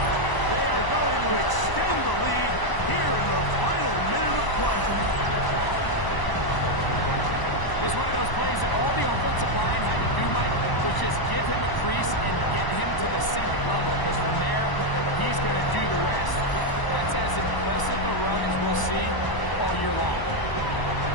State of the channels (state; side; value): late; right; 1.0 ms